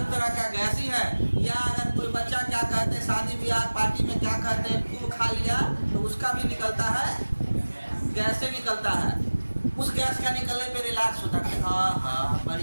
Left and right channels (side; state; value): both; inverted; correlation -1.00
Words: तरह का गैस ही है। या अगर कोई बच्चा क्या कहते हैं, शादी ब्याह पार्टी में क्या कहते हैं, खूब खा लिया तो उसका भी निकलता है, गैस से निकलता है। उस गैस का निकलने पे रिलैक्स होता है, हाँ हाँ